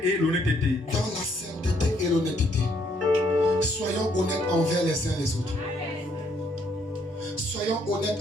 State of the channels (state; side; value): normal; both; correlation 0.69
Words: et l'honnêteté. Dans la sainteté et l'honnêteté. Soyons honnêtes envers les uns les autres. Soyons honnêtes